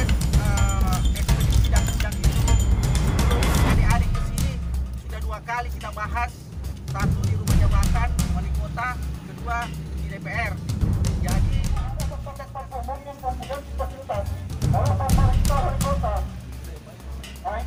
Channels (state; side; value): identical; both; correlation 1.00